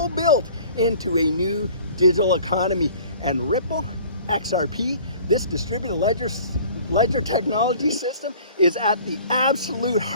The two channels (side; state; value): both; inverted; correlation -0.48